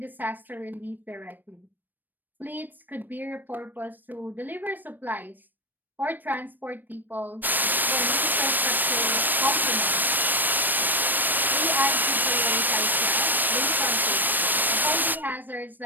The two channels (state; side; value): late; left; 0.090 ms